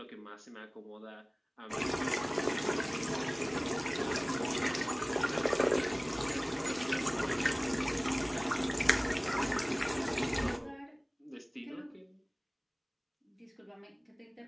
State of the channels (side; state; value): both; identical; correlation 1.00